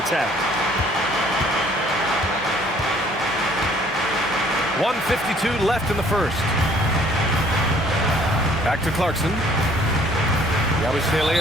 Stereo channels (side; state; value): both; normal; correlation 0.59